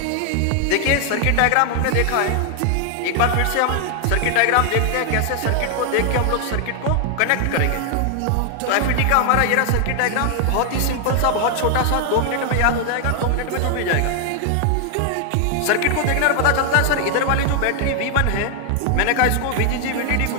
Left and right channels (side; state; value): both; different; correlation 0.00